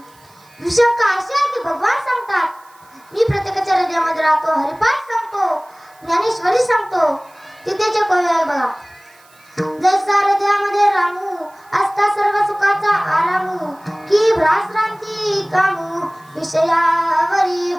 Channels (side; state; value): right; noise; hiss, 30 dB below the sound